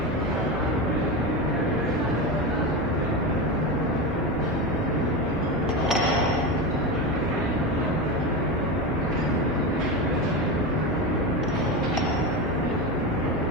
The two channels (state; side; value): normal; both; correlation 0.19